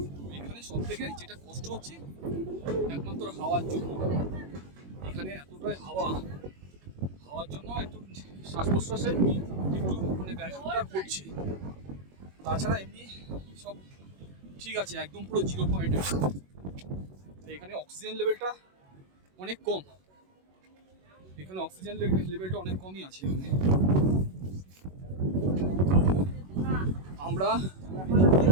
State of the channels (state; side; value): late; left; 21 ms